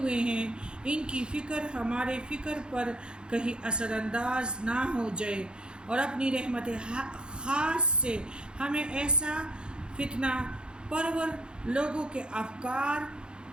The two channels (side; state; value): left; late; 0.050 ms